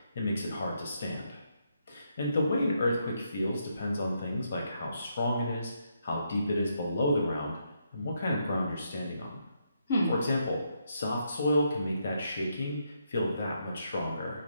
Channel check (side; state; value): both; inverted; correlation -0.78